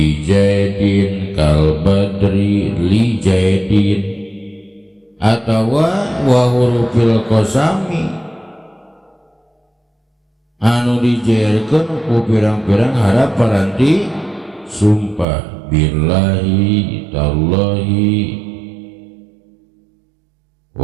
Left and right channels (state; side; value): drops out; left; at 15.2 s